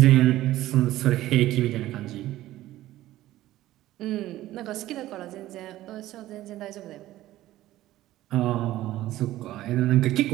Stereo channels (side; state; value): left; quieter; 15.2 dB